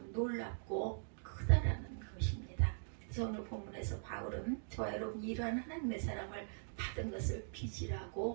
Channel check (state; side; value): silent; left; digital silence